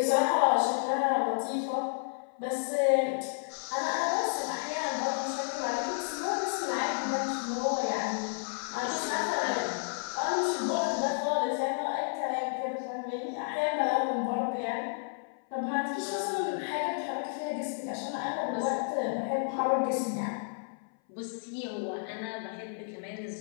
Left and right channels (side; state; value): right; silent; 57 dB below the other